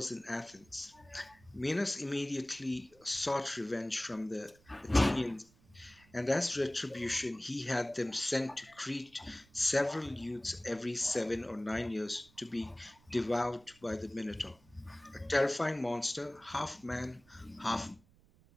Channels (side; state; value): right; noise; rumble, 29 dB below the sound